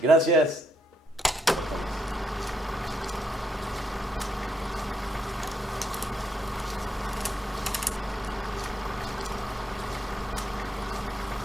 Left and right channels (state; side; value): normal; both; correlation 0.78